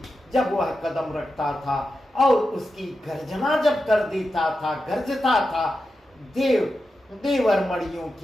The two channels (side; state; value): both; normal; correlation 0.90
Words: जब वह कदम रखता था और उसकी गर्जना जब कर देता था, गरजता था, देवर मणियों